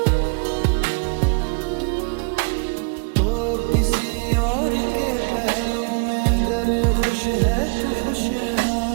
किसी और के पहलू में अगर खुश है तो खुश रहा,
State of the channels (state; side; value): quieter; left; 36.2 dB